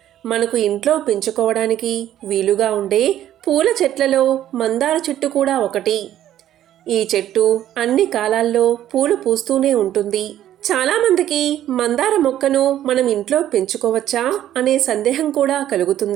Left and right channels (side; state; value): left; quieter; 12.0 dB